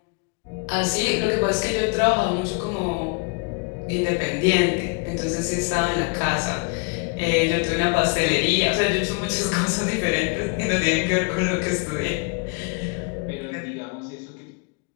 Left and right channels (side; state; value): right; quieter; 32.0 dB